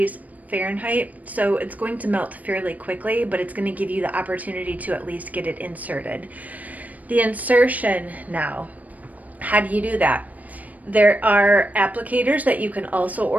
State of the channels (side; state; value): left; late; 0.074 ms